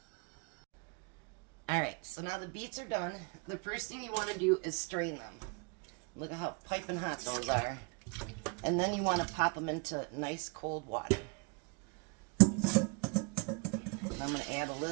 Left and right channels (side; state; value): left; quieter; 33.4 dB